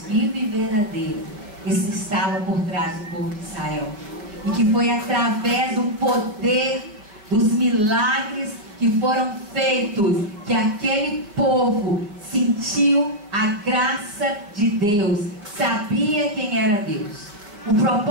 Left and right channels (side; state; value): left; late; 5.0 ms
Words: vivo e verdadeiro estava por trás do povo de Israel. E que foi através do poder, dos milagres que foram feitos, que aquele povo sentiu a graça de Deus, sabia quem era Deus. O